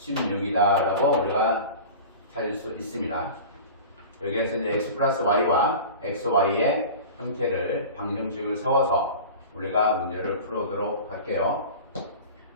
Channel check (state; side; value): inverted; both; correlation -0.36